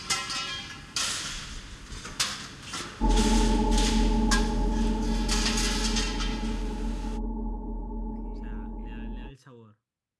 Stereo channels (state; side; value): identical; both; correlation 1.00